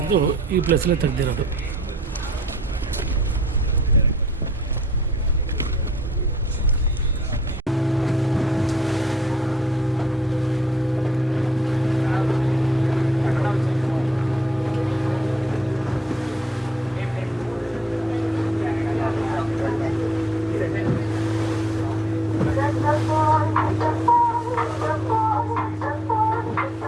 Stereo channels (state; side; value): normal; both; correlation 0.67